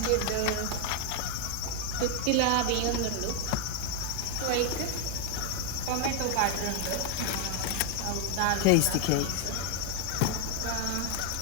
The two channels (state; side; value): different; both; correlation 0.01